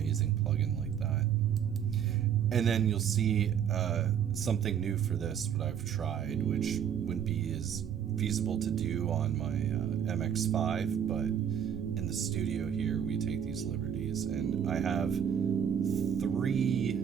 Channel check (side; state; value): left; quieter; 8.6 dB